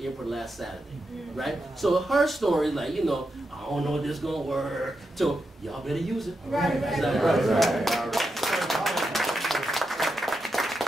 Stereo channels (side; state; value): both; normal; correlation 0.87